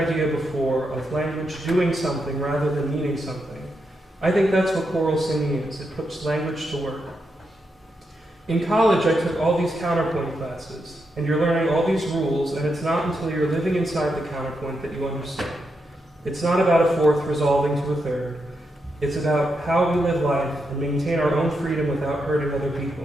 before of language doing something rather than meaning something, I think that's what choral singing is. It puts language to work. In college, I took all these counterpoint classes, and you're learning all these rules, and it's not until you're living inside the counterpoint that you understand. It's not about a fourth resolving to a third. It's about how we live life and maintain our own freedom without hurting other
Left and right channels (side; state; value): both; normal; correlation 0.83